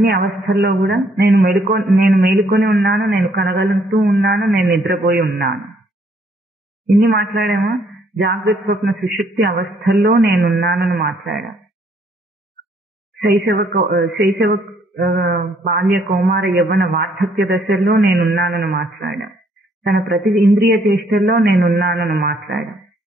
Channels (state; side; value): normal; both; correlation 0.66